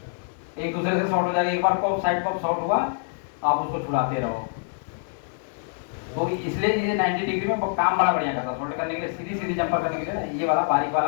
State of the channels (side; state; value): right; silent; digital silence